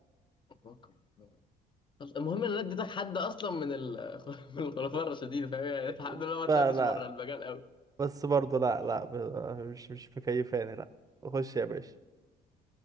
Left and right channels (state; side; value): normal; both; correlation 0.62